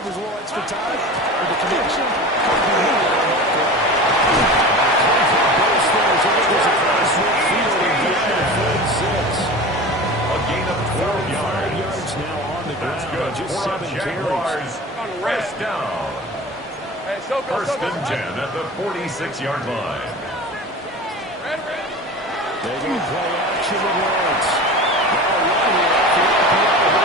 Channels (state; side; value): normal; both; correlation 0.34